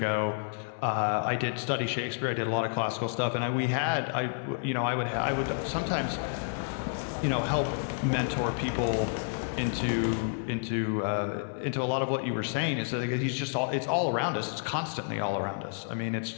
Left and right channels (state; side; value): silent; right; digital silence